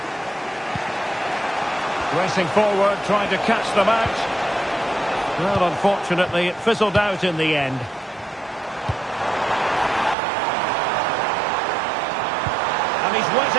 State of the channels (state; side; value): drops out; left; at 10.2 s